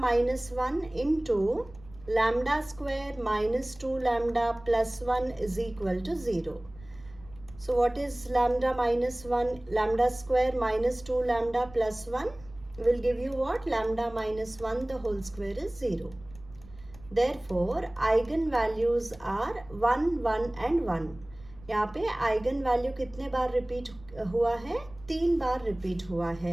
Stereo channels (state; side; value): noise; right; rumble, 21 dB below the sound